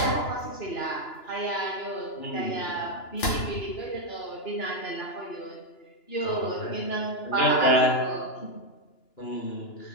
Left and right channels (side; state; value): right; late; 2.9 ms